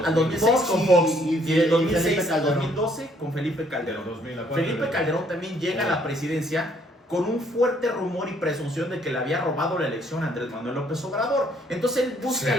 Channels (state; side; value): normal; both; correlation 0.65